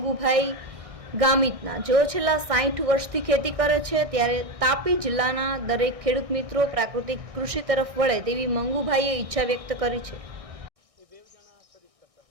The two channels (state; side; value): late; left; 1.6 ms